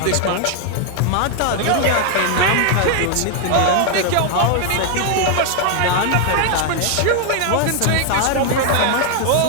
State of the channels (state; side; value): different; both; correlation 0.00